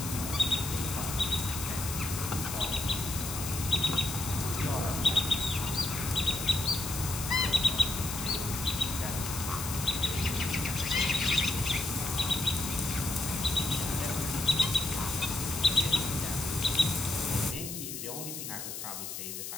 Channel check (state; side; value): noise; left; hiss, 7 dB below the sound